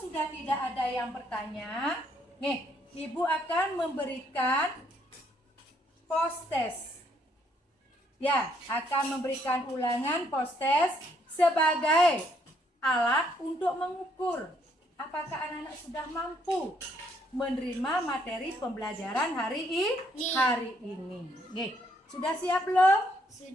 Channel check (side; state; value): both; normal; correlation 0.70